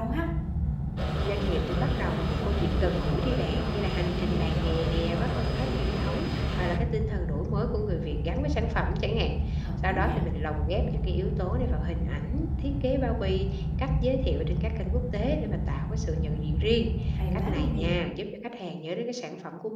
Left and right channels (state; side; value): identical; both; correlation 1.00